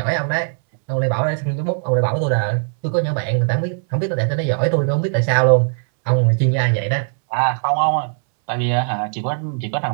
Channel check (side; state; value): left; silent; 66 dB below the other